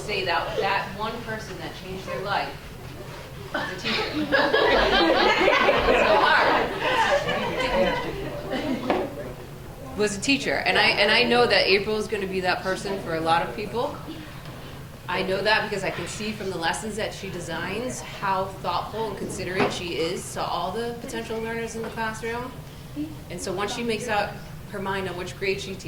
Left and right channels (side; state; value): both; identical; correlation 1.00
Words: that one person that changed their life was a teacher. It's so hard. Was a teacher. And I know that April is going to be that person for a lot of people. I know that because I can see from the lessons that she designs how thoughtful and considerate she is to all the potential learners in the classroom. And so once she makes up her mind on which grade she